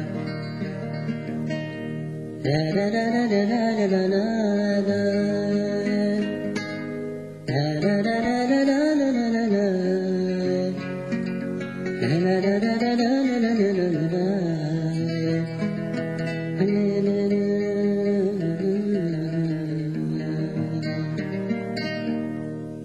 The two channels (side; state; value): both; identical; correlation 1.00